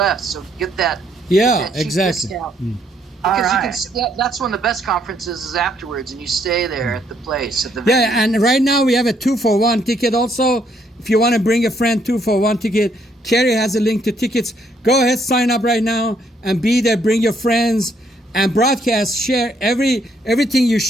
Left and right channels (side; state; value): both; normal; correlation 0.70